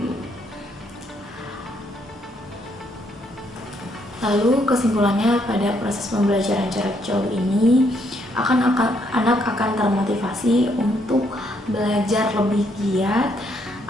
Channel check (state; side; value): normal; both; correlation 0.72